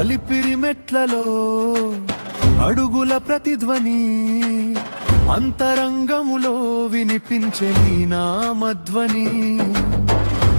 అలిపిరి మెట్లలో అడుగుల ప్రతిధ్వని అంతరంగములో వినిపించే నీ నామధ్వని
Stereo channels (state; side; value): inverted; both; correlation -1.00